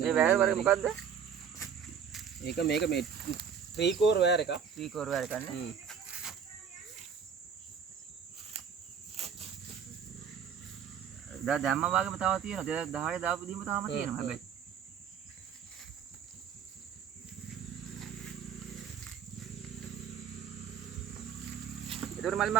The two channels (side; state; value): left; quieter; 7.5 dB